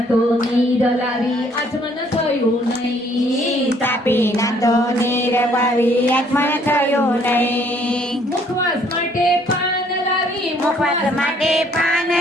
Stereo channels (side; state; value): both; normal; correlation 0.62